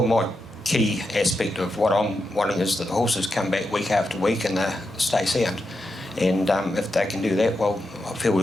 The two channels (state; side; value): normal; both; correlation 0.87